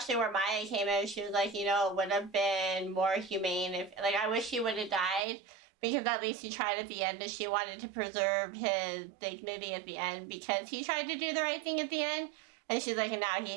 where Maya came in. She was like, you know, it would have been more humane if, like, I wish he would have died, because at least he tried at the end, and she wanted to preserve his dignity at the end, because he tried to do the right thing at the end. And she's like, and now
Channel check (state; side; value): drops out; left; at 5.2 s